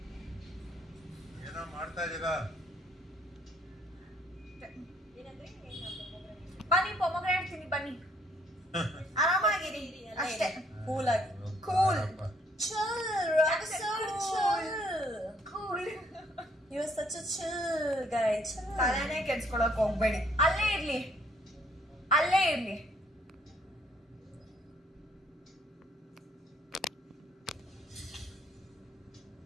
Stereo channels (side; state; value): both; normal; correlation 0.65